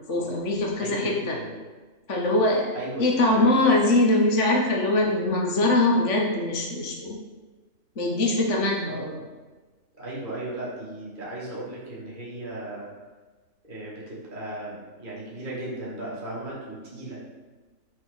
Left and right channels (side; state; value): right; late; 3.5 ms